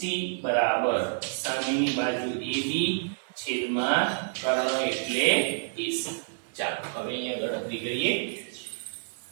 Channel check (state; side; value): silent; left; digital silence